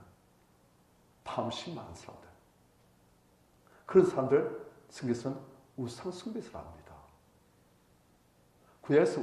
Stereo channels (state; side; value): identical; both; correlation 1.00